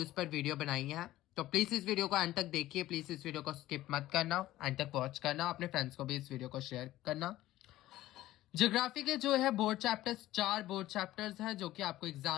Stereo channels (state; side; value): quieter; right; 15.3 dB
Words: पर वीडियो बनाई है। तो प्लीज़ इस वीडियो को अंत तक देखिए, प्लीज़ इस वीडियो को स्किप मत करना, अंत तक वॉच करना, अपने फ्रेंड्स को भी इस वीडियो को शेयर करना। ज्योग्राफी के जो है बोर्ड चैप्टर्स, 4 बोर्ड चैप्टर्स हैं जो कि आपको